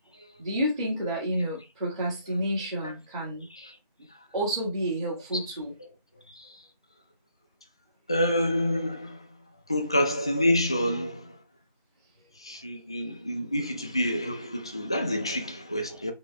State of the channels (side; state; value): both; inverted; correlation -0.73